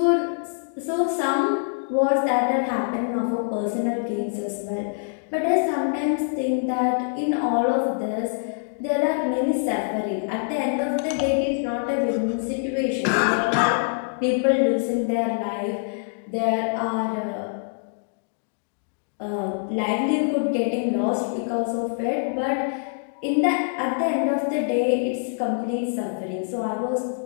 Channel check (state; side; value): silent; right; digital silence